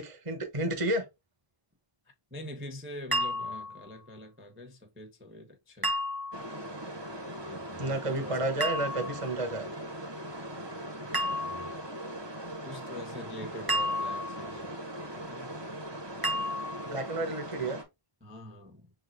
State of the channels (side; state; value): left; late; 1.0 ms